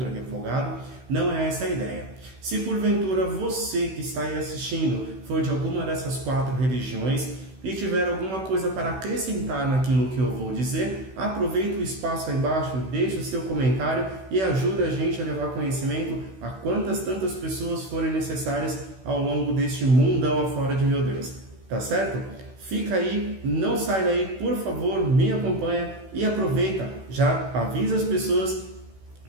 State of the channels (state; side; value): late; left; 16 ms